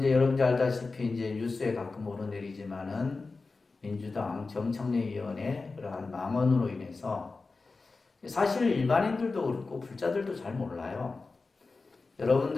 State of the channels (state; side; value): quieter; right; 3.9 dB